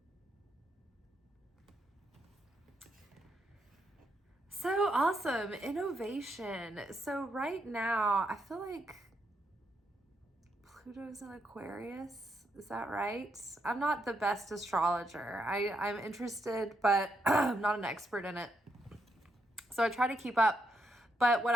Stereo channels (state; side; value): normal; both; correlation 0.79